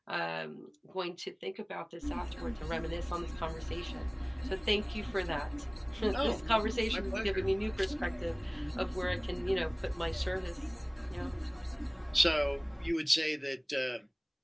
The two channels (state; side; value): identical; both; correlation 1.00